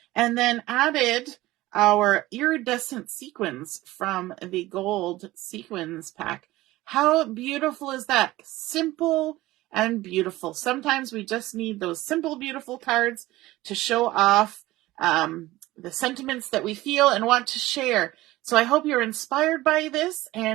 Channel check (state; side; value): quieter; left; 17.7 dB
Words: and then added our iridescent sequins from the gold sequins pack. How beautiful is that? Simple and beautiful. Sometimes we just need those simple, beautiful cards to show off the sentiments that we feel and want to share. So I hope you're inspired by this,